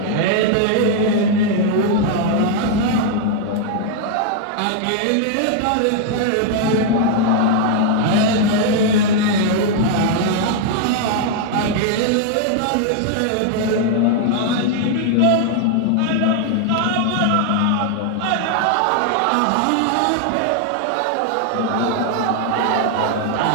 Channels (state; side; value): different; both; correlation 0.00